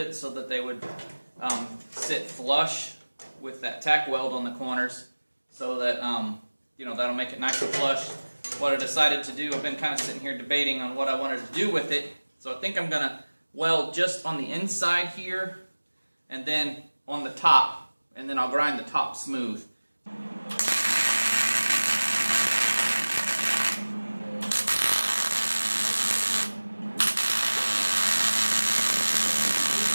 so that they would sit flush with that tack weld on the corners, so that you know, that'll make it nice and flush. What I decided to do, I've been kind of sitting here debating on what I wanted to do with it. So I think I'm gonna weld just on the inside here and then on the top, and then I'll grind the top smooth.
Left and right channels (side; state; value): both; inverted; correlation -1.00